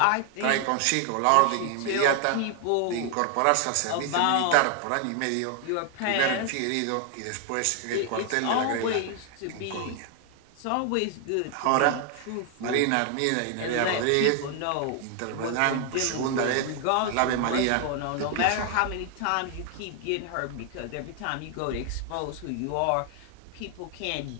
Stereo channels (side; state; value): both; different; correlation 0.00